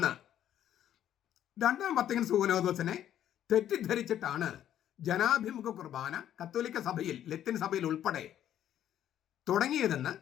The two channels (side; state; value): right; quieter; 11.0 dB